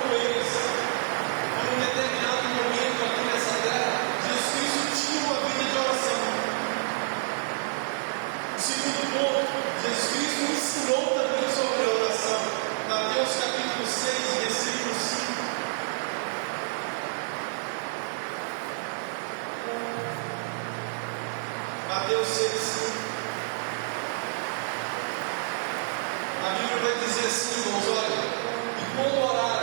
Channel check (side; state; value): left; silent; 59 dB below the other